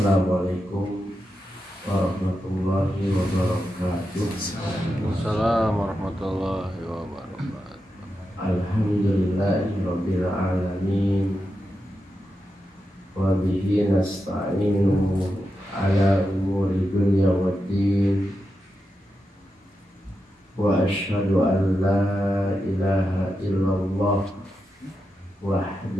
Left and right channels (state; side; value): normal; both; correlation 0.88